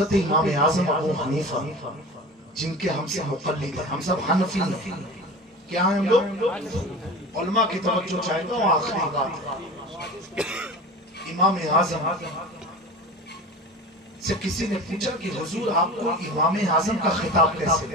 امام اعظم ابو حنیفہ جن کے ہم سے مقلد ہیں، ہم سب حنفی ہیں، کیا ہیں ہم لوگ؟ علماء کی توجہ چاہے تو آخری بات ہے۔ امام اعظم سے کسی نے پوچھا کہ حضور آپ کو امام اعظم کا خطاب کیسے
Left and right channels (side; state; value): both; normal; correlation 0.34